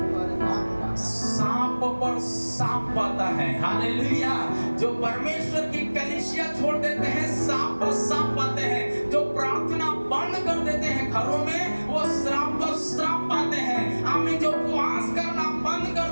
सांप पर सांप पाता है। हालेलुया। जो परमेश्वर की कलीसिया छोड़ देते हैं सांप पर सांप पाते हैं, जो प्रार्थना बंद कर देते हैं घरों में वो श्राप पर श्राप पाते हैं। आमीन। जो उपवास करना बंद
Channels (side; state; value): both; inverted; correlation -1.00